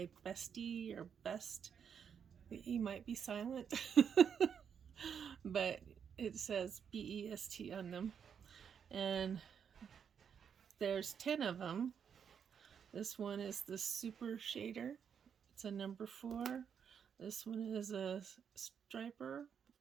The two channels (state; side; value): quieter; left; 7.5 dB